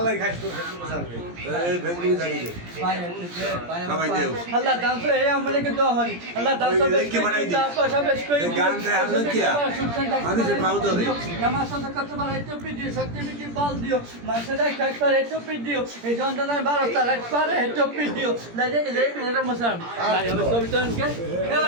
খাইছ তো এই ভেঙ্গি জানি দে সবাই দেও আল্লাহ দান তো এই আমলে কে দোয়া হয় আল্লাহ দান তো কি বানাই দি গান রে আল্লাহ কিয়া মানুষের পাও তো নামাজ সাথে করতে পারে একটু পিডিও শক্তি মিটি বল দিও মাসের খাট করে একটু পিডিও এই যন্ত্রণায় 12 তালাক পারে একটু পিডিও লাগে এটা মশাম ভাই আমি সবই তো কে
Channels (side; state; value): left; late; 17 ms